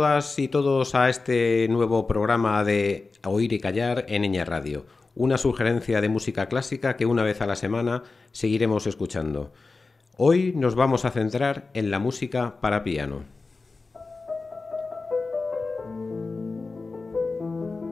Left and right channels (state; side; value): quieter; right; 3.9 dB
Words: y todos a este nuevo programa de Oír y Callar en Ñ Radio, una sugerencia de música clásica que una vez a la semana seguiremos escuchando. Hoy nos vamos a centrar en la música para piano.